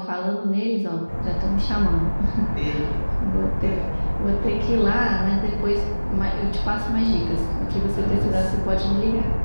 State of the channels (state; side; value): inverted; both; correlation -1.00